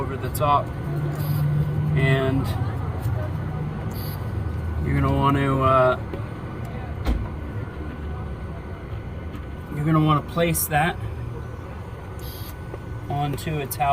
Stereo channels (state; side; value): identical; both; correlation 1.00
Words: the top, and you're going to want to place that onto its